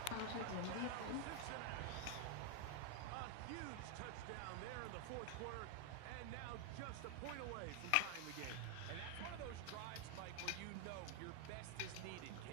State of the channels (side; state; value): both; different; correlation 0.00